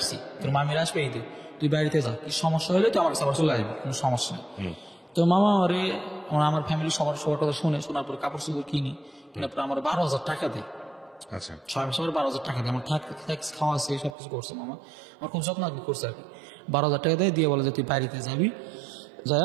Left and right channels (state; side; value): drops out; left; at 14.2 s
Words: তোর মামির আসবে ঈদে, তুই বাড়িতে যা, কি সমস্যা হলে তুই আমার কাছে আবার চলে আসবি, কোনো সমস্যা নেই। তো মামা আমার ফ্যামিলি সবার কথা শোনার পরে কাপড় চোপড় কিনি, কেনার পরে আমার 12,000 টাকা দেয়। আচ্ছা। 6 মাস পরে 12,000 টাকা দেয়। আমার ট্যাক্স খাওয়া আছে, সব কিছু করছে মামা, আমার খুব যত্ন করছে আর কি। 12,000 টাকা দেয়, দিয়ে বলে যে তুই বাড়িতে যাবি,